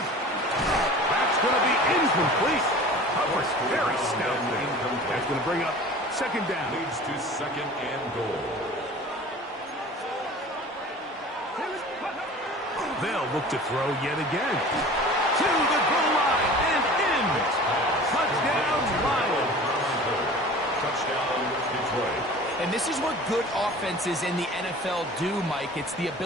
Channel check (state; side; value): normal; both; correlation 0.41